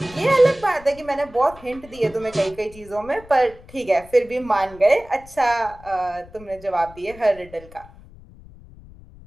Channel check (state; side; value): noise; left; rumble, 21 dB below the sound